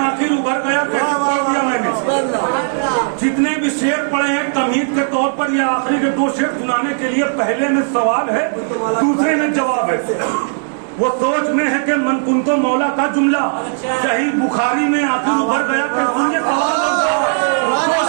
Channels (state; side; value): silent; left; digital silence